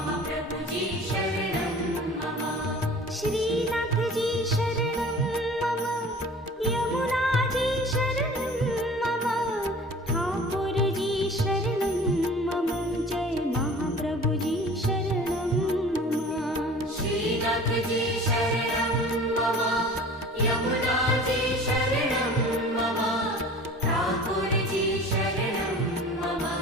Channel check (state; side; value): normal; both; correlation 0.43